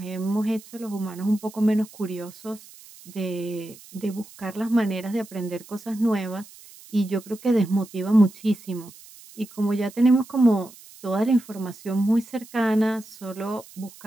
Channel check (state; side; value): noise; right; hiss, 21 dB below the sound